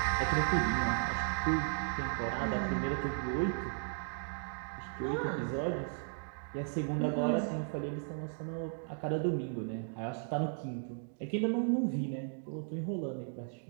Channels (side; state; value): left; silent; digital silence